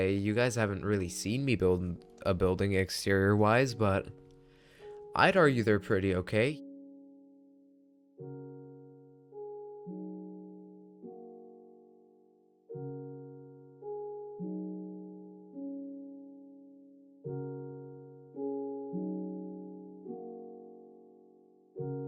You guys haven't really seen me build a building exterior wise, but I'd argue they're pretty okay.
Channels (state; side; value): identical; both; correlation 1.00